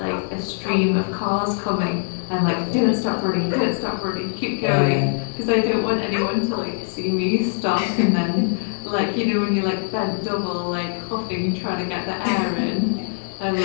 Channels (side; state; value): right; silent; digital silence